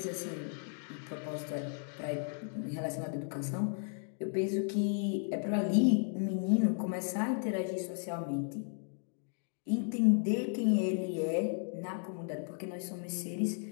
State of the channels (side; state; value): right; silent; 55 dB below the other